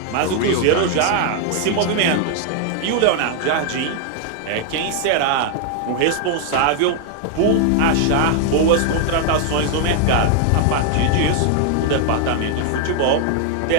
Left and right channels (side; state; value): both; different; correlation 0.00